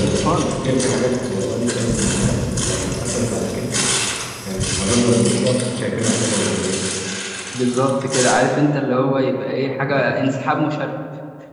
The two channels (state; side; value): identical; both; correlation 1.00